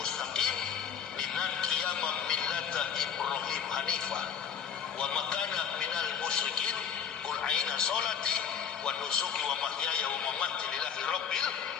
dinan qiyamam millata Ibrahim hanifah wa makana minal musyrikin. Qul a'ina salati wa nusuki wa mahyaya wa mamati lillahi rabbil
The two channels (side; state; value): right; quieter; 7.7 dB